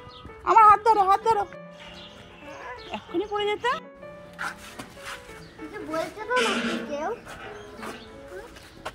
আমার হাত ধরো হাত ধরো, এক্ষুনি পড়ে যেতে। বলতে তো না কেউ।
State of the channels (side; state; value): both; identical; correlation 1.00